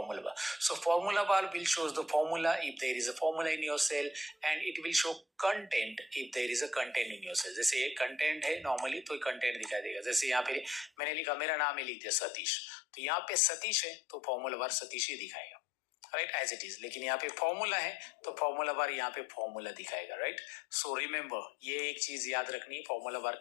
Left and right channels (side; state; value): right; drops out; at 10.9 s